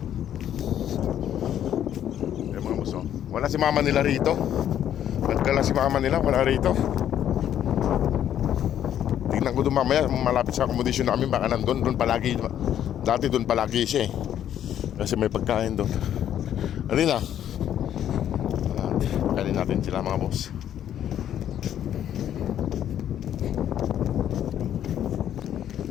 Ayan mga boss, wala si mama nila rito. Nagdala si mama nila, wala rito. Tingnan ko doon mamaya, malapit sa accommodation namin, baka nandun, doon palagi. Dati doon palagi siya eh. Kasi may pagkain doon. Alina. Pagkain natin sila mga boss.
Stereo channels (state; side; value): quieter; right; 10.5 dB